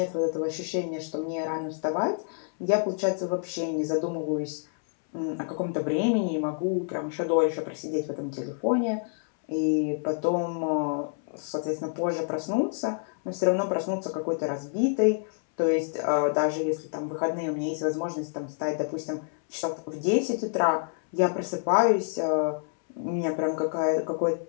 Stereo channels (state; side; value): silent; right; 60 dB below the other